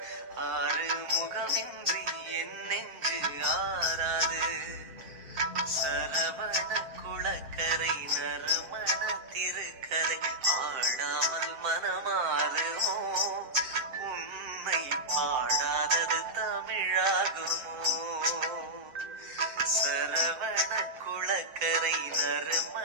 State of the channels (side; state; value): left; late; 7.6 ms